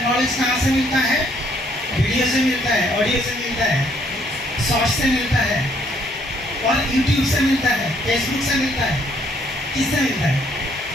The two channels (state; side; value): normal; both; correlation 0.67